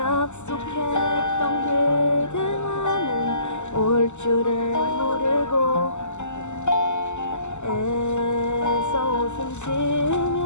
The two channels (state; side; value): late; right; 0.83 ms